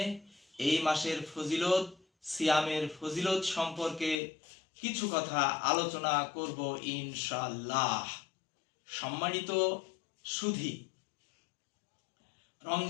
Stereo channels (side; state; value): right; drops out; at 4.2 s